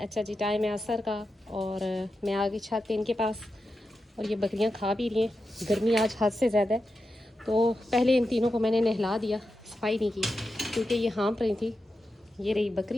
जी, टाइम है असर का और मैं आ गई छत पे इनके पास और ये बकरियां खा भी रही हैं। गर्मी आज हद से ज़्यादा है, तो पहले इन तीनों को मैंने नहला दिया, सफाई नहीं की क्योंकि ये हाँफ रही थी। ये रही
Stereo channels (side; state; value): both; normal; correlation 0.89